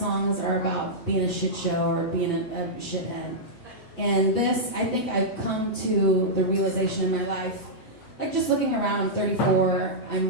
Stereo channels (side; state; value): right; late; 8.1 ms